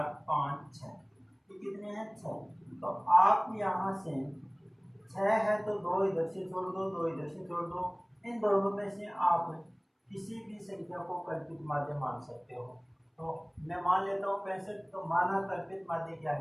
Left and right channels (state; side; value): identical; both; correlation 1.00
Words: 5 6, ये कितने हैं? 6। तो आप यहाँ से 6 है तो 2 इधर से छोड़ दो, 2 इधर से छोड़ दो। इन दोनों में से आप किसी भी संख्या को कल्पित माध्य मान सकते हो। तो मैं मान लेता हूँ 65। तो माना कल्पित माध्य क्या